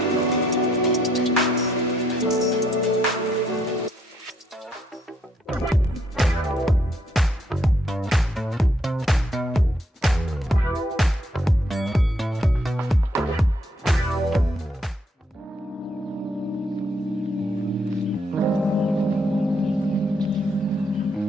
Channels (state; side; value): normal; both; correlation 0.71